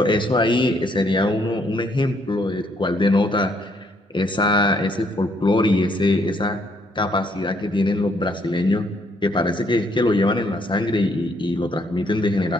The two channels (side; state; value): both; normal; correlation 0.69